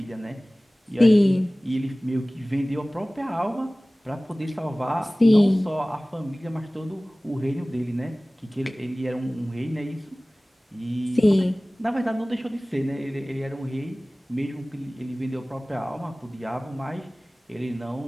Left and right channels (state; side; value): normal; both; correlation 0.98